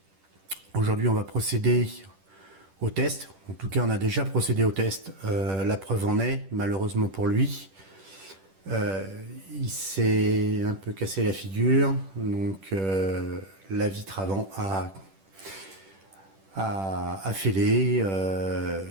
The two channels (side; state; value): left; late; 10 ms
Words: Aujourd'hui on va procéder au test, en tout cas on a déjà procédé au test, la preuve en est, malheureusement pour lui. Il s'est un peu cassé la figure, donc la vitre avant a fêlé,